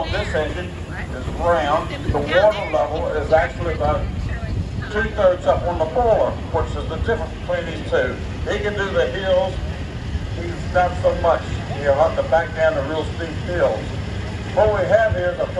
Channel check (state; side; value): identical; both; correlation 1.00